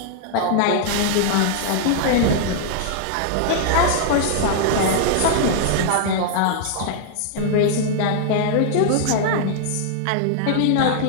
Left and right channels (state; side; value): different; both; correlation -0.01